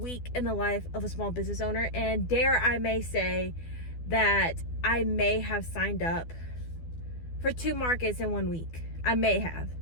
in the life of a small business owner, and dare I may say that I may have signed up for 2 markets in 1 week. I may have.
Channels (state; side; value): late; right; 12 ms